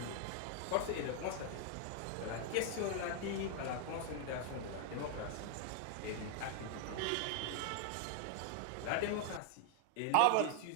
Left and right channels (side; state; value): both; different; correlation 0.00